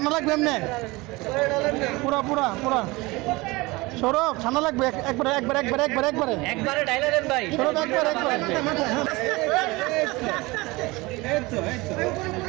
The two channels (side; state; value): left; quieter; 22.6 dB